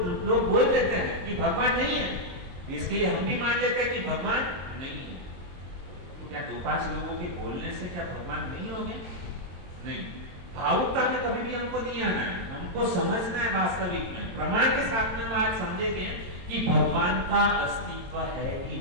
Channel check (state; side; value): late; left; 22 ms